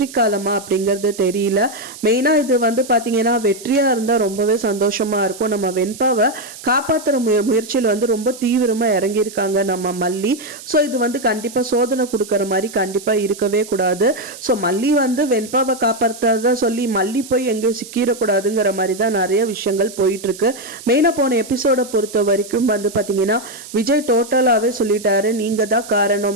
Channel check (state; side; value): noise; right; hiss, 15 dB below the sound